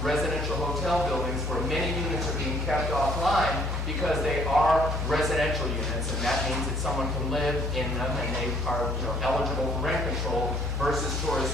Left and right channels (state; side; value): normal; both; correlation 0.62